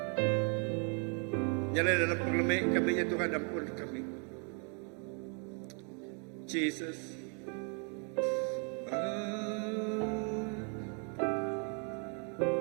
Nyala dalam pengelemi kami ya Tuhan ampun kami. Jesus, I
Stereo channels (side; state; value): left; quieter; 39.4 dB